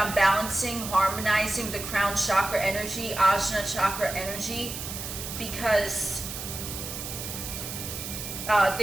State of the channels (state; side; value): noise; right; hiss, 7 dB below the sound